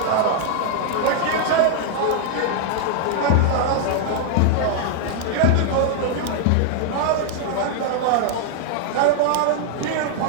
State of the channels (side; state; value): both; different; correlation 0.00